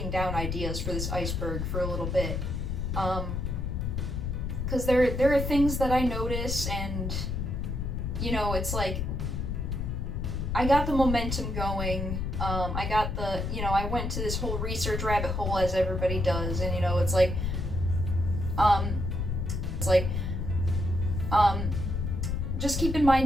down ideas for this Iceberg for a little bit, because there are things that I notice, and you know, it's like, I got the momentum going, I got the, you know, I went to this whole research rabbit hole as everybody does, and you know, it's like, just keep in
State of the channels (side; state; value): left; noise; rumble, 2 dB below the sound